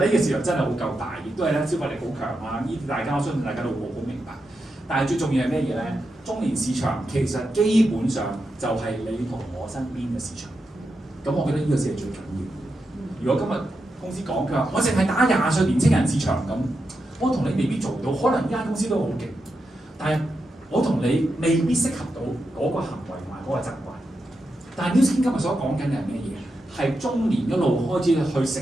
個市場真係好夠大，亦都係咧消費力好強啊！呢啲大家我相信大家都好明白。但係最重要係咩嘢咧？中年市場其實基本上就係你同我身邊嘅市場。咁我覺得呢個先係最緊要。如果今日公司講佢話，我淨係打20歲年青人市場咁，我同你未必做到。可能呢間公司都好勁，但係我同你未必適合到嗰個行為同埋嗰個習慣。但係 Nu Skin 今日所講緊嘅係咩嘢？係中年一路開始去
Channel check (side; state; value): both; normal; correlation 0.87